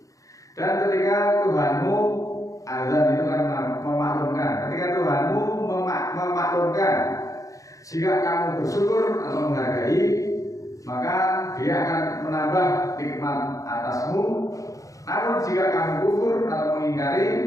Dan ketika Tuhanmu, azan itu kan memaklumkan, ketika Tuhanmu memaklumkan, jika kamu bersyukur atau menghargai, maka Dia akan menambah nikmat atasmu. Namun jika kamu kufur atau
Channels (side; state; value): right; late; 0.16 ms